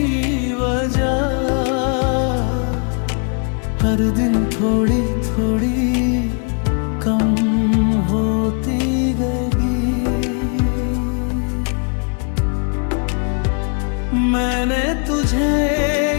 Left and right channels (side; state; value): right; quieter; 39.9 dB